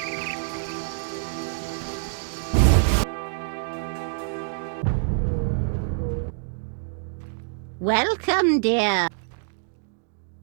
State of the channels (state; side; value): silent; left; digital silence